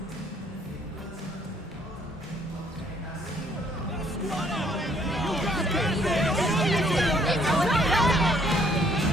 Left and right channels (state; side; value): normal; both; correlation 0.65